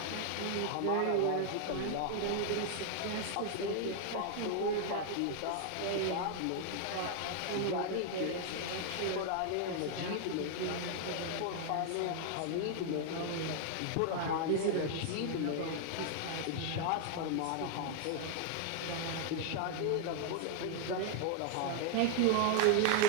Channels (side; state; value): both; different; correlation 0.00